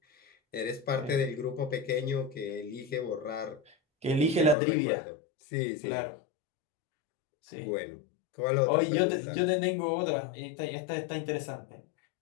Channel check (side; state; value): right; drops out; at 4.5 s